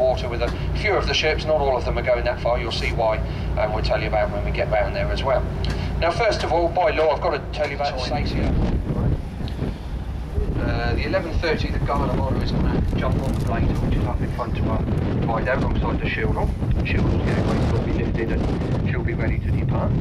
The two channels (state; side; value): identical; both; correlation 1.00